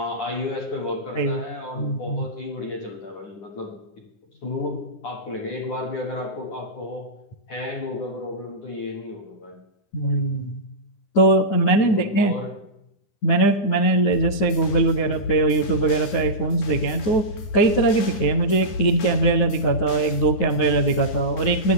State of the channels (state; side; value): late; right; 10 ms